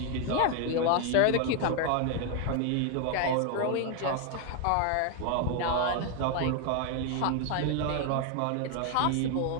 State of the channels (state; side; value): different; both; correlation 0.01